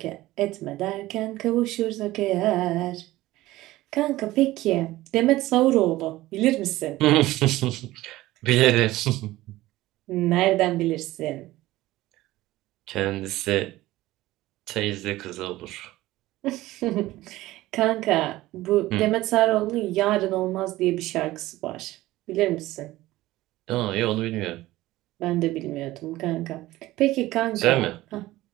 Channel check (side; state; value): left; quieter; 17.1 dB